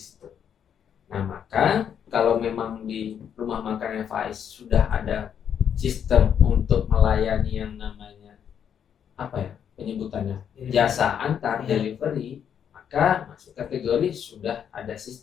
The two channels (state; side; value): quieter; right; 8.4 dB